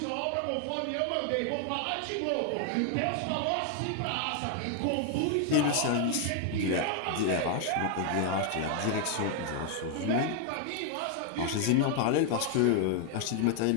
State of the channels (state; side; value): different; both; correlation 0.00